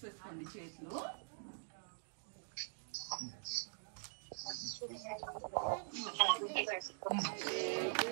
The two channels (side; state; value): left; silent; digital silence